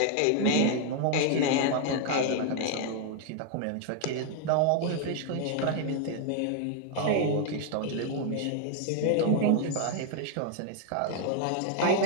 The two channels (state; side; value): different; both; correlation 0.00